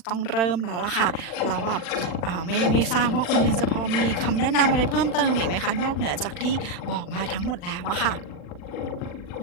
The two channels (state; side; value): late; right; 40 ms